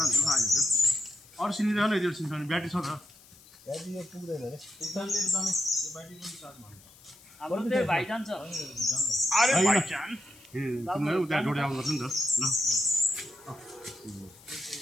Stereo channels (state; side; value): noise; left; hiss, 24 dB below the sound